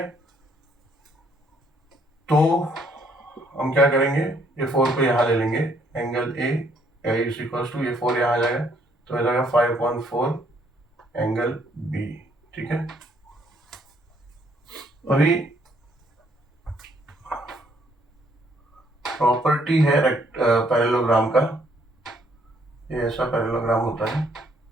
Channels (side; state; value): both; normal; correlation 0.67